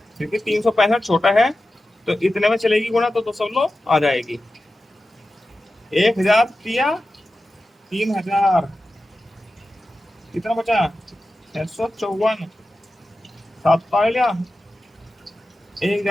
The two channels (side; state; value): both; normal; correlation 0.93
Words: क्योंकि 365 छोटा है तो इतने में चलेगी गुणा तो दशमलव आ जाएगी। 1000 दिया 3000, कितना बचा 654, 7 पा लिया,